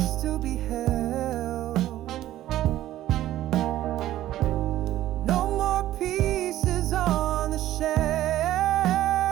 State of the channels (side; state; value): left; quieter; 13.8 dB